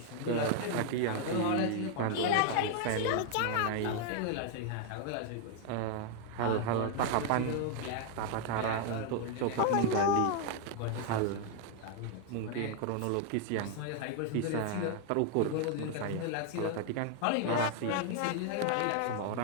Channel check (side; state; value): both; different; correlation 0.00